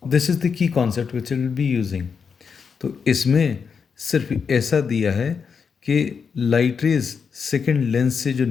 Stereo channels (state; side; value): quieter; right; 6.0 dB